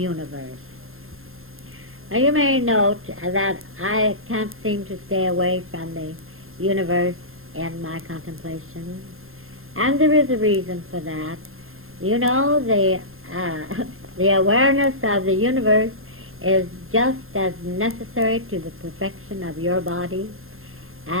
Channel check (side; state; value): left; late; 0.61 ms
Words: Now, you may note that I can't seem to stay away from the universe in my contemplation, and there is a reason for that. You know, the awareness of the universe is just as necessary to the perfection of your body